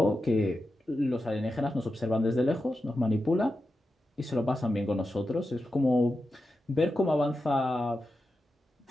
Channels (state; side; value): normal; both; correlation 0.90